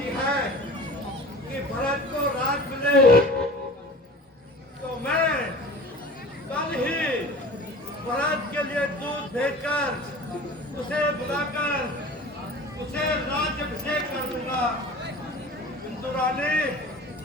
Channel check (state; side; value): normal; both; correlation 0.40